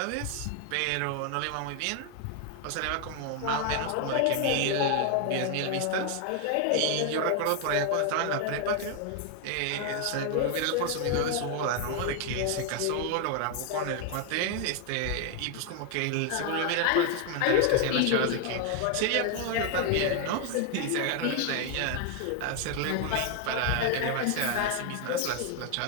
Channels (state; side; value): different; both; correlation 0.01